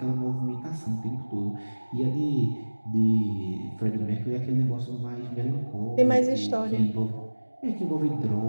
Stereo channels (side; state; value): both; inverted; correlation -1.00